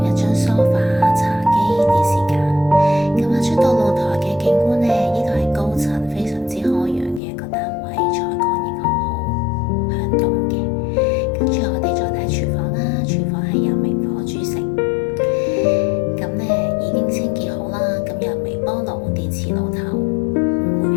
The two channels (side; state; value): right; drops out; at 7.2 s